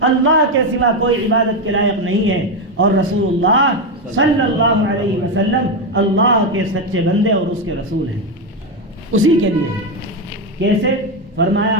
اللہ کے سوا کوئی عبادت کے لائق نہیں ہے اور رسول اللہ صلی اللہ علیہ وسلم اللہ کے سچے بندے اور اس کے رسول ہیں، اسی کے لیے ہے۔ کیسے؟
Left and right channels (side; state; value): both; normal; correlation 0.09